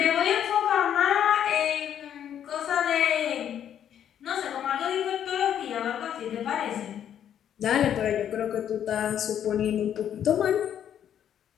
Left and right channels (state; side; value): quieter; right; 9.7 dB